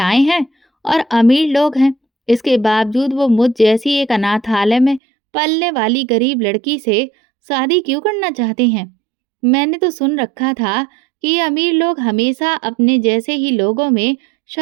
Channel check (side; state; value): left; drops out; at 5.0 s